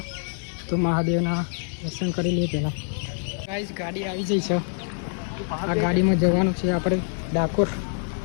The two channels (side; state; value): right; silent; digital silence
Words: તો મહાદેવના દર્શન કરી લઈએ પહેલાં. ગાઈસ ગાડી આવી જઈ છે, આ ગાડીમાં જવાનું છે આપણે ડાકોર.